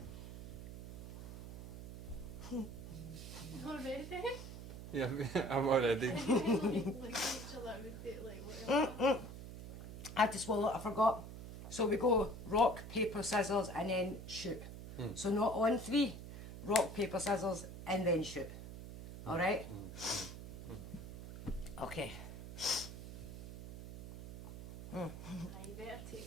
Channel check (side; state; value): right; noise; hum, 11 dB below the sound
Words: Not ready. Yeah, I'm already. Like each other would be like whatever. I had to swallow it, I forgot. So we go rock, paper, scissors, and then shoot. So not on three, rock, paper, scissors, and then shoot. Alright? Okay. You better